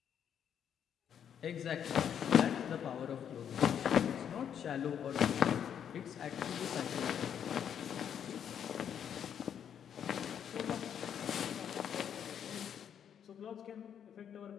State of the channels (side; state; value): right; quieter; 8.7 dB